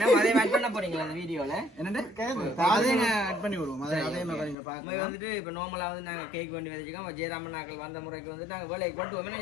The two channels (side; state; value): right; drops out; at 4.5 s